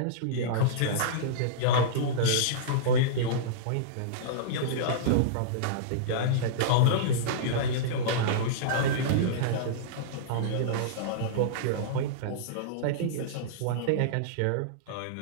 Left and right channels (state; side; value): different; both; correlation -0.03